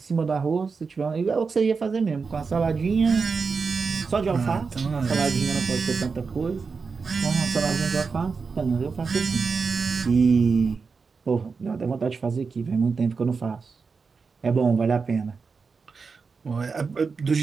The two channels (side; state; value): left; quieter; 4.9 dB